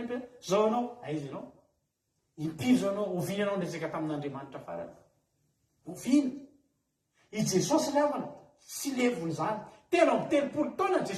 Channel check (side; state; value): both; identical; correlation 1.00